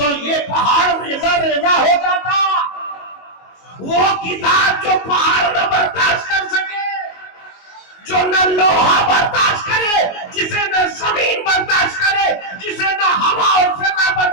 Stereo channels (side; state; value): right; late; 22 ms